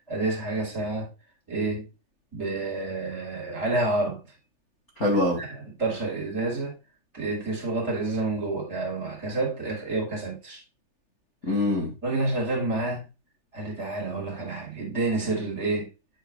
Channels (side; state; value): right; late; 3.4 ms